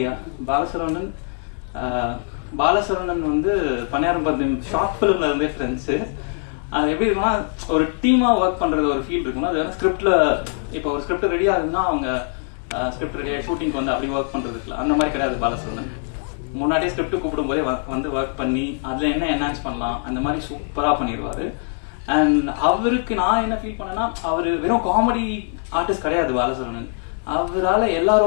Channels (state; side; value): silent; right; 56 dB below the other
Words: Bala Saravanan வந்து பன்னியாரம் பத்தியம் ஷார்ட் பிலிம்ல இருந்தே ஃப்ரெண்ட்ஸ். அது எப்படி இருக்குன்னா ஒரு டீமா ஒர்க் பண்றது ஒரு ஃபீல் இருக்குன்னா, அது ஸ்கிரிப்ட்ல இப்போ ஒரு ஸ்கிரிப்ட் ரெடி ஆகுதுன்னா அவங்க ஸ்கிரிப்ட் ரெடியா ஷூட்டிங் வந்து அப்படி ஒர்க் பண்றதுக்குல அந்த மாதிரி கிடையாது. பாலசரவணன் முன்னாடியே ஸ்கிரிப்ட் கூப்பிடும் போதே வந்து ஒர்க் பண்ணி அதுல என்ன என்ஹான்ஸ் பண்ணலாம் அந்த மாதிரி சூப்பரா பண்ணிடுவாரு. அண்ட் அவருக்கு நான் என்ன ஃபீல் பண்ணேன்னா, அவரு வெறும் காமெடி ஆர்டிஸ்ட் கிடையாது பாலசரவணன். அவரால் எல்லா